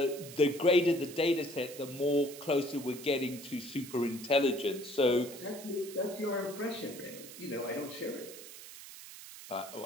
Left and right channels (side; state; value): right; noise; hiss, 14 dB below the sound